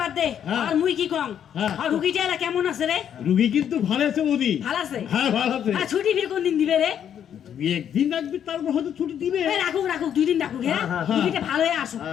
দে হ্যাঁ। আর মুই কি কম হ্যাঁ। আর রুগীটা এলা কেমন আছে রে? রুগী কিন্তু ভালো আছে বৌদি ভালো আছে? হ্যাঁ ভালো আছে আর ছুটি ফির কোন দিন দিবে রে? একদিন রাখবি তারপর হয়তো ছুটি দিবে এই রাখুক 2 দিন রাখুক হ্যাঁ হ্যাঁ, হ্যাঁ। রুগীটা ভালো হয়ে আসুক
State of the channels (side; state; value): right; quieter; 9.2 dB